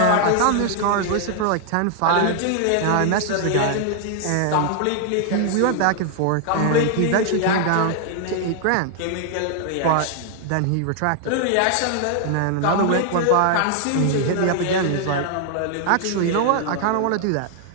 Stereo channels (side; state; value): both; different; correlation 0.00